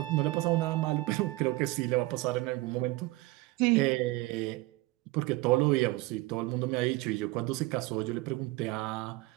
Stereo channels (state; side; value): quieter; left; 20.4 dB